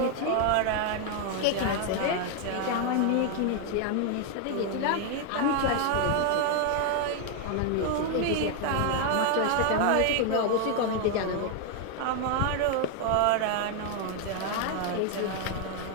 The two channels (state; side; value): different; both; correlation 0.01